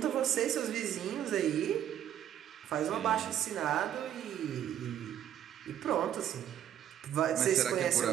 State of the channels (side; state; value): left; quieter; 10.6 dB